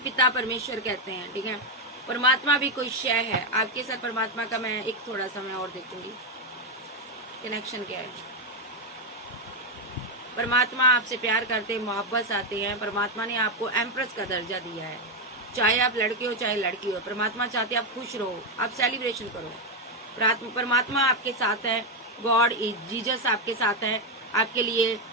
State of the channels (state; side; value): normal; both; correlation 0.04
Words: पिता परमेश्वर कहते हैं। ठीक है, परमात्मा भी कोई शय है। आपके साथ परमात्मा का मैं एक थोड़ा सा मैं और देखूंगी कनेक्शन क्या है। परमात्मा आपसे प्यार करते, मोहब्बत आते हैं। परमात्मा ने आपको एम्प्रेस का दर्जा दिया है, चाहे आप लड़के हो चाहे लड़की हो। परमात्मा चाहते हैं आप खुश रहो, आप सेलिब्रेशन करो। परमात्मा आपके साथ है, गॉड इज जीसस आपके साथ है। आपके लिए